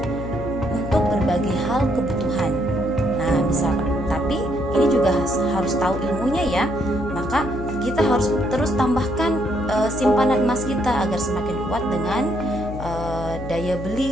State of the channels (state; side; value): noise; left; hum, 9 dB below the sound